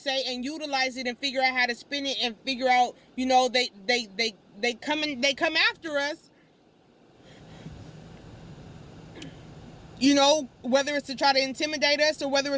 and utilize it and figure out how to spin it and figure out, you know, they come after us. You know, whether it's to try to intimidate us or whether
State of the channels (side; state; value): both; identical; correlation 1.00